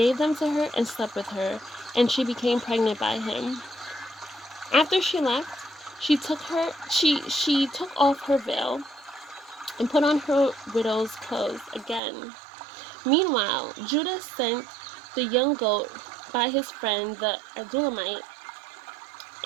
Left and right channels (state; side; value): drops out; left; at 12.0 s